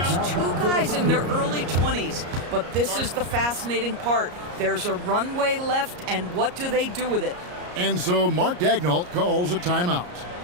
2 guys in their early 20s. But this is the fascinating part. There's a runway left, and what do they do with it? And so Mark Daigneault calls a timeout.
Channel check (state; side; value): late; left; 34 ms